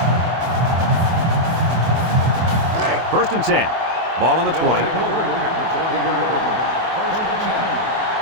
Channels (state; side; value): late; left; 24 ms